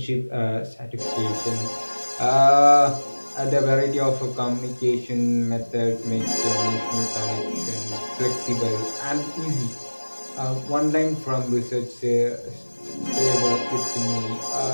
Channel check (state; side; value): inverted; both; correlation -1.00